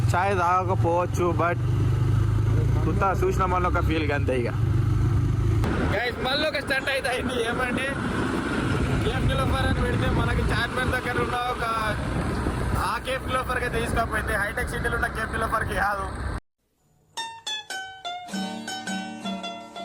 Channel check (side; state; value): both; identical; correlation 1.00